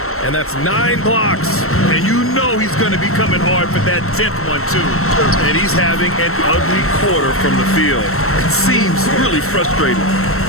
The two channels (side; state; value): right; late; 0.63 ms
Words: And that's 9 blocks. And you know he's going to be coming hard for that 10th one, too. And he's having an ugly quarter from the field. It seems really frustrating.